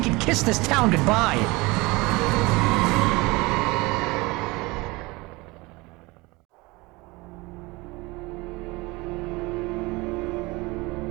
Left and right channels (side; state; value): left; quieter; 23.4 dB